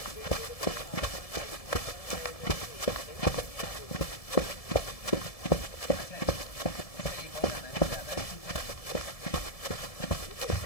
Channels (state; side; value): late; right; 1.7 ms